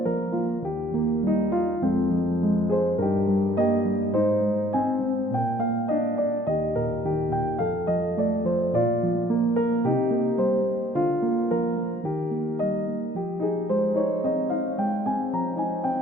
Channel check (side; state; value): both; normal; correlation 0.60